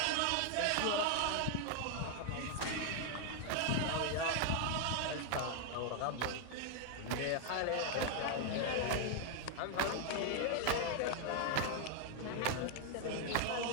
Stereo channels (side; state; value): both; different; correlation 0.00